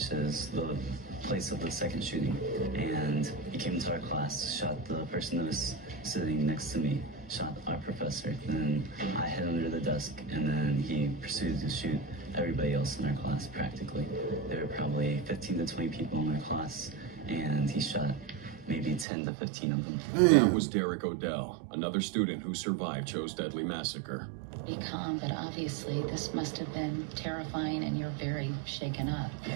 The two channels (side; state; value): left; drops out; at 19.1 s